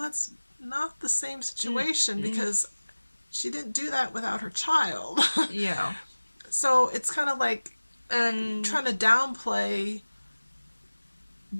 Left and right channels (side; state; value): both; inverted; correlation -1.00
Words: not the same situation because she didn't do that without her child. Yeah. So it's kind of like trying to downplay